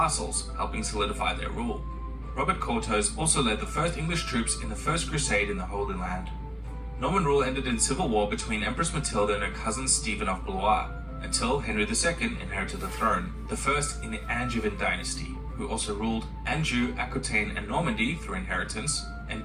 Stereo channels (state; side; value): identical; both; correlation 1.00